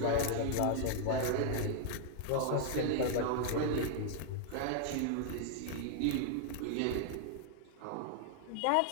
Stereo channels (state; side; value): different; both; correlation 0.00